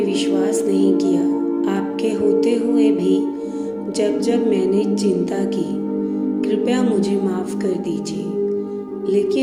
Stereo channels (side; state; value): both; identical; correlation 1.00